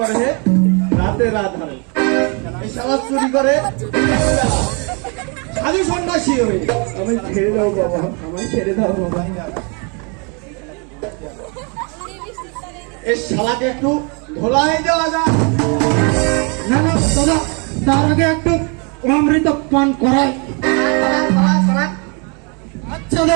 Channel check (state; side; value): quieter; left; 34.3 dB